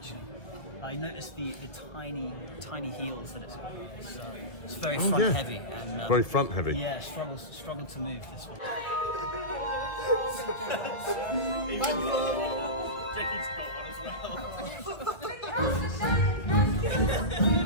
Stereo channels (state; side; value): late; right; 2.0 ms